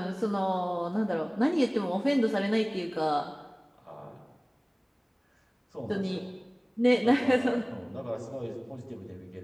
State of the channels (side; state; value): both; identical; correlation 1.00